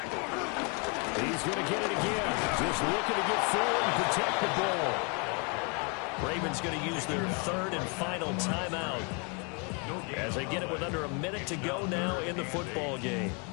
He's going to get it again. Just looking to get forward and protect the ball. Ravens going to use their 3rd and final timeout as they get it with under a minute to go now in the football game.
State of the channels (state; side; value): quieter; right; 34.3 dB